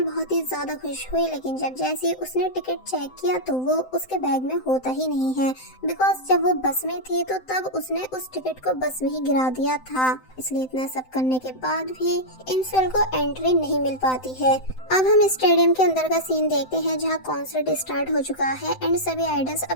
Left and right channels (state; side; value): late; right; 7.8 ms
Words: बहुत ही ज्यादा खुश हुई, लेकिन जब जैसे उसने टिकट चेक किया तो वो उसके बैग में होता ही नहीं है, बिकॉज जब वो बस में थी तो तब उसने उस टिकट को बस में ही गिरा दिया था। इसलिए इतना सब करने के बाद भी इंसोल को एंट्री नहीं मिल पाती है। अब हम स्टेडियम के अंदर का सीन देखते हैं, जहां कॉन्सर्ट स्टार्ट हो चुका है एंड सभी आइडल्स